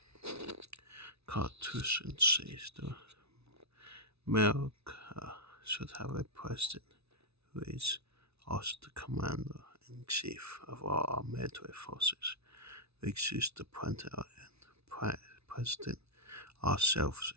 Constitution says the America should have a president who is also the commander-in-chief of all our military forces. We choose the president ourselves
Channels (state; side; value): late; left; 0.80 ms